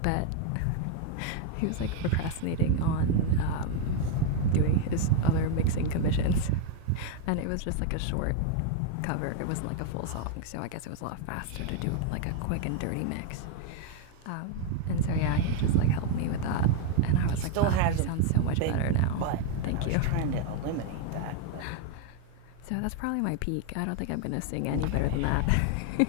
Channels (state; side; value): different; both; correlation 0.01